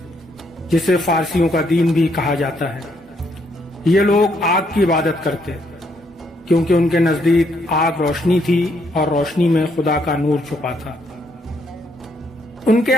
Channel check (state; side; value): normal; both; correlation 0.73